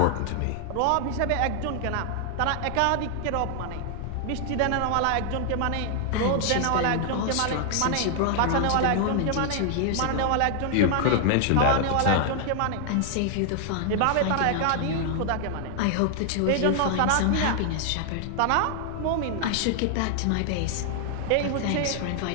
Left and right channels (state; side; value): different; both; correlation 0.00